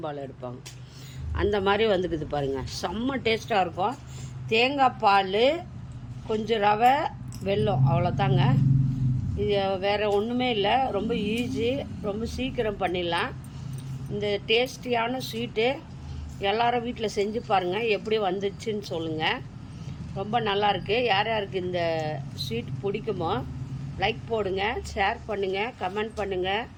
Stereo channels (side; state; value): both; identical; correlation 1.00